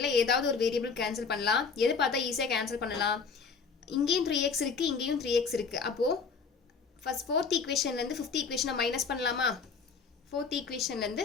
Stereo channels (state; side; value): quieter; right; 5.3 dB